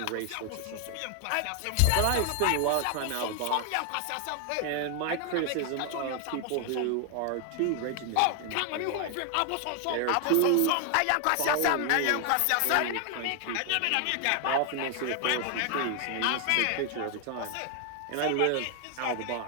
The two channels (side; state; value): both; different; correlation 0.00